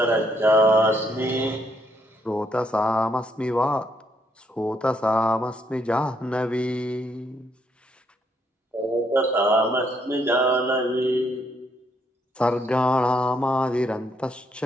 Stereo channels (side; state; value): both; normal; correlation 0.73